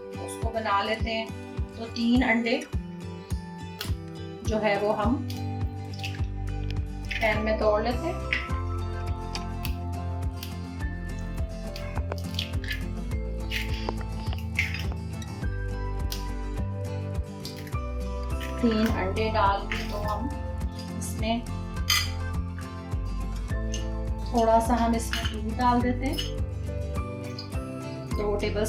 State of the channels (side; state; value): both; identical; correlation 1.00